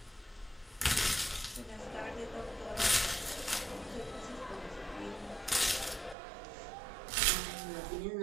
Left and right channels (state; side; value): drops out; left; at 6.2 s